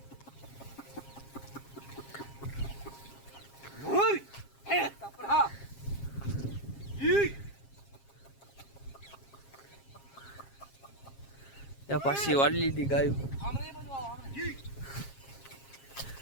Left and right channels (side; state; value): right; late; 7.4 ms